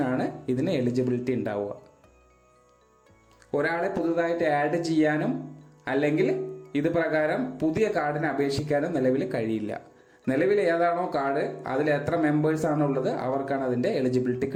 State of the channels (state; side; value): identical; both; correlation 1.00